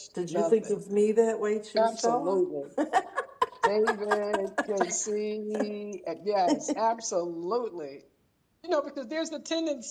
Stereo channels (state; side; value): identical; both; correlation 1.00